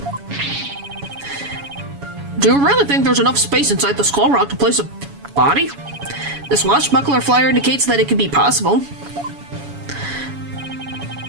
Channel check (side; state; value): left; late; 7.1 ms